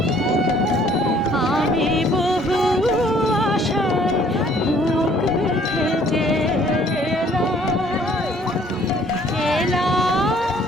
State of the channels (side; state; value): both; normal; correlation 0.59